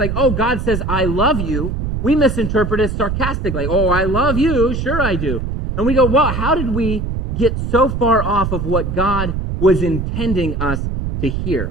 oh, God says, I love you, we misinterpret it sarcastically. Oh, I love you. Sure I do. And we go, well, how did we get so far off of what God was intending us to hear.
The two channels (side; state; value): right; noise; rumble, 3 dB below the sound